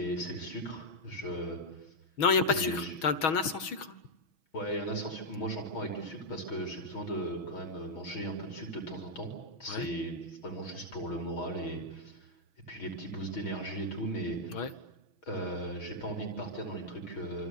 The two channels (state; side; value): late; right; 6.3 ms